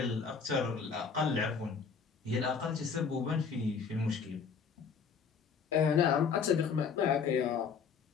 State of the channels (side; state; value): right; quieter; 5.9 dB